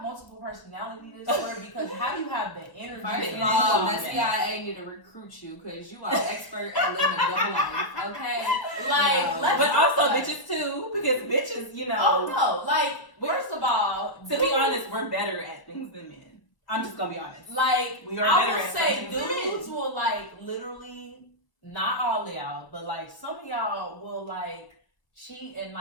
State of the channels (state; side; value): late; right; 1.1 ms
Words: multiple personality disorder? Because how do you have the energy? First of all, the CIA need to recruit you because you are an expert at living a double life. Okay, like, but also bitches too, because bitches, you know. Oh no, like first of all, to be honest, we're better at things than men. I'm just gonna be honest. Like, we are I better would at say things than dudes men. will like literally, not all of y'all, but like some of y'all will like cheat and